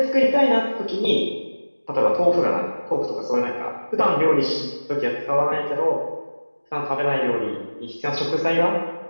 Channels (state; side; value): inverted; both; correlation -1.00